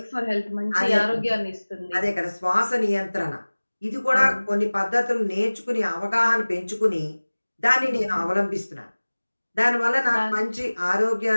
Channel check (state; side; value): inverted; both; correlation -1.00